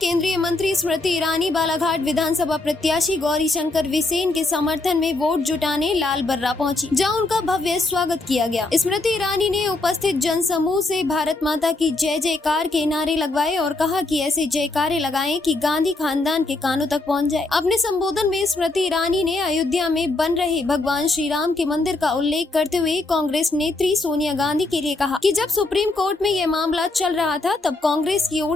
केंद्रीय मंत्री स्मृति ईरानी बालाघाट विधानसभा प्रत्याशी गौरीशंकर बिसेन के समर्थन में वोट जुटाने लाल बर्रा पहुंची, जहां उनका भव्य स्वागत किया गया। स्मृति ईरानी ने उपस्थित जनसमूह से भारत माता की जय जयकार के नारे लगवाए और कहा कि ऐसे जयकारे लगाएं कि गांधी खानदान के कानों तक पहुंच जाए। अपने संबोधन में स्मृति ईरानी ने अयोध्या में बन रहे भगवान श्री राम के मंदिर का उल्लेख करते हुए कांग्रेस नेत्री सोनिया गांधी के लिए कहा कि जब सुप्रीम कोर्ट में यह मामला चल रहा था, तब कांग्रेस की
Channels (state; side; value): quieter; right; 3.1 dB